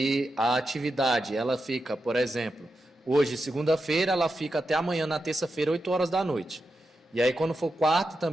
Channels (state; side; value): normal; both; correlation 0.88